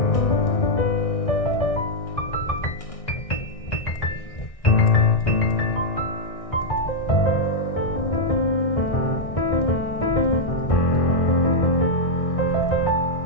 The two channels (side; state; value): right; late; 1.6 ms